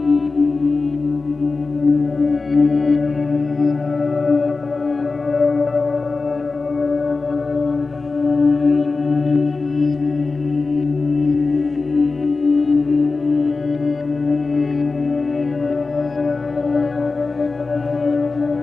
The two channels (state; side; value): quieter; right; 4.0 dB